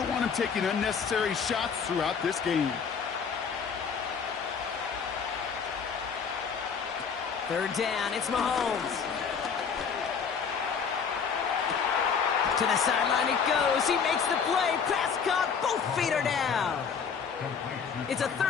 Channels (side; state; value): right; quieter; 6.3 dB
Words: want him taking unnecessary shots throughout this game. 3rd down, it's Mahomes. To the sideline it goes. He makes the play. Pass caught. Both feet are down. It's a